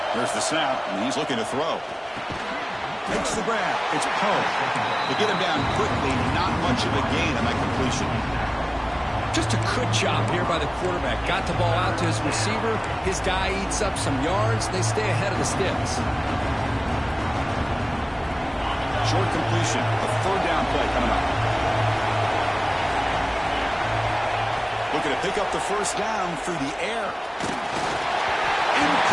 There's the snap, and he's looking to throw. Makes the grab. It's Poe. They get him down quickly. Not much of a gain on that completion. Just a good job here by the quarterback. Got the ball out to his receiver. His guy eats up some yards. They stay ahead of the sticks. Short completion. A third down play coming up. Looking to pick up the first down through the air.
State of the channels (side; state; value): both; identical; correlation 1.00